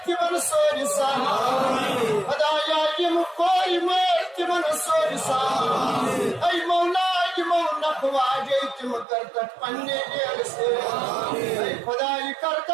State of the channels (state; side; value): drops out; left; at 9.1 s